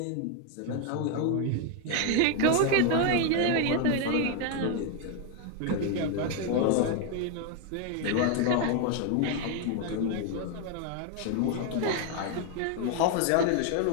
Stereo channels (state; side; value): different; both; correlation 0.01